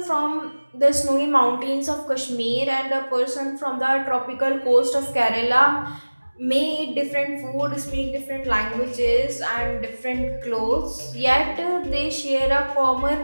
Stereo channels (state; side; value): inverted; both; correlation -1.00